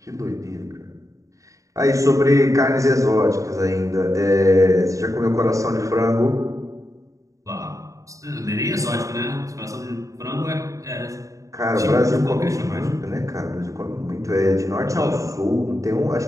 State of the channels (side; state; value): left; late; 0.16 ms